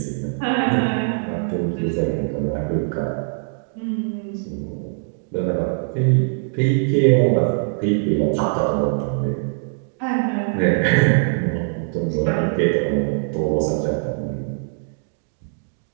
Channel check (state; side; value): silent; left; digital silence